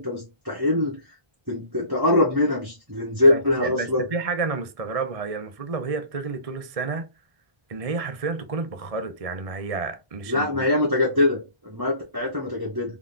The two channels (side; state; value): left; late; 1.6 ms